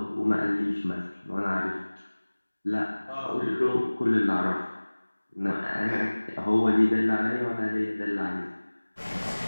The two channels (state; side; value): inverted; both; correlation -1.00